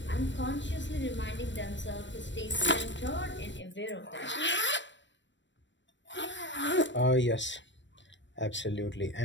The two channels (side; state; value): right; late; 0.53 ms